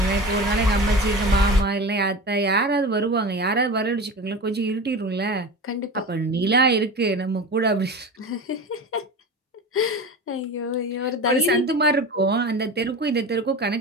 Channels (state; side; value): normal; both; correlation 0.30